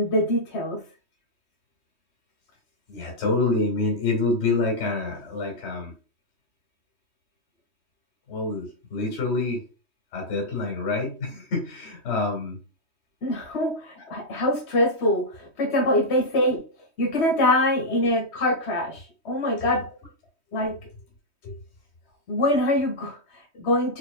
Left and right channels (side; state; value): right; late; 3.2 ms